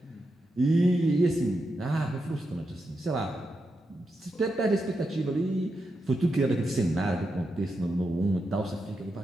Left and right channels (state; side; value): normal; both; correlation 0.86